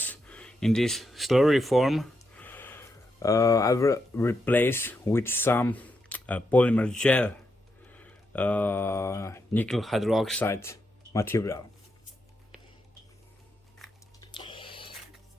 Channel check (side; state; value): both; normal; correlation 0.82